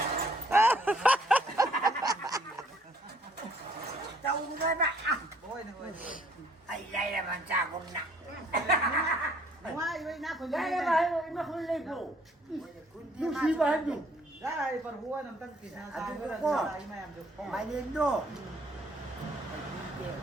tao người bạn ôi ai đây là bạn cha con nặng ngoài với nát của đây là bạn nó không lên đủ lúc gì mà hết đủ đây phần hua nằm tăng kỳ sao à là cô mà em được mày lên đồ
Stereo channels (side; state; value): both; normal; correlation 0.62